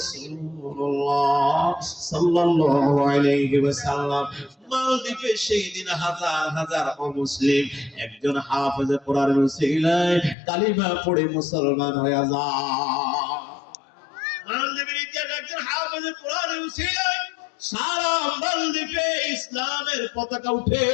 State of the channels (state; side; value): drops out; right; at 10.4 s